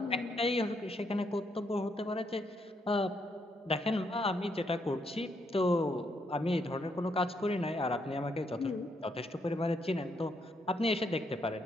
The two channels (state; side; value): normal; both; correlation 0.76